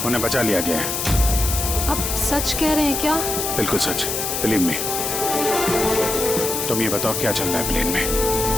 उन्हें बचा लिया गया है। आप सच कह रहे हैं क्या? बिल्कुल सच, बिलीव मी। तुम ये बताओ क्या चल रहा है प्लेन में?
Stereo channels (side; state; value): left; noise; hiss, 2 dB below the sound